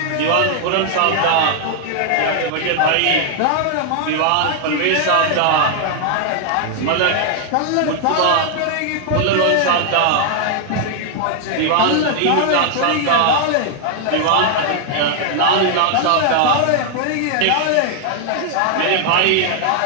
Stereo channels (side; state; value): both; different; correlation 0.00